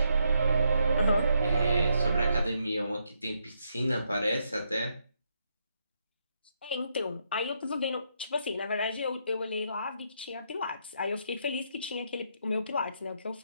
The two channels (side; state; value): both; inverted; correlation -0.78